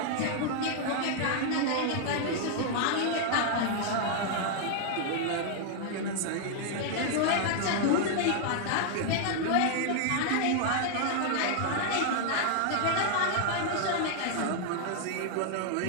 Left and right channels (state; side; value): different; both; correlation 0.00